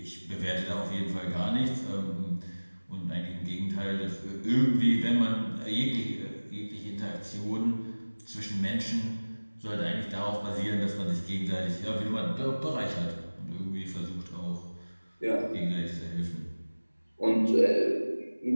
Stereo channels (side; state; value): both; inverted; correlation -1.00